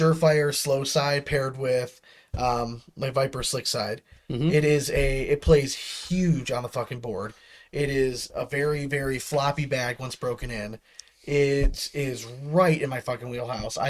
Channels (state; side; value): identical; both; correlation 1.00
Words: slow side paired with like Viper slick side. Mm-hmm. It plays huge on the fucking board. It is a very, very floppy bag once broken in. It is right in my fucking wheelhouse.